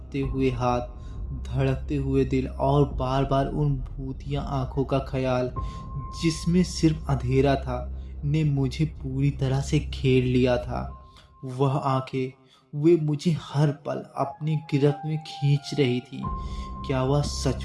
हुए हाथ, धड़कते हुए दिल और बार बार उन भूतिया आंखों का ख्याल जिसमें सिर्फ अंधेरा था ने मुझे पूरी तरह से घेर लिया था। वह आंखें, वे मुझे हर पल अपनी गिरफ्त में खींच रही थी। क्या वह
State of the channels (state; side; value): identical; both; correlation 1.00